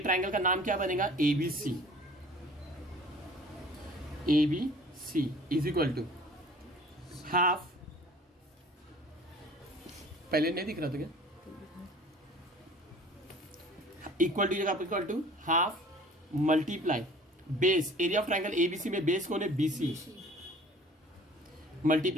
का नाम क्या बनेगा? A B C. A B C is equal to half, पहले नहीं दिख रहा था क्या? इक्वल टू जगह equal to half multiply base, area of triangle ABC में बेस कौन है? बीसी,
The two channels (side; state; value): both; normal; correlation 0.48